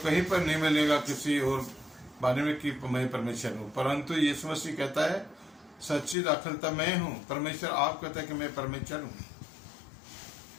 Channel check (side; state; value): right; drops out; at 6.2 s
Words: कहीं पर नहीं मिलेगा किसी और बारे में कि मैं परमेश्वर हूँ, परंतु यीशु मसीह कहता है सच्ची दाखलता मैं हूँ। परमेश्वर आप कहता है कि मैं परमेश्वर हूँ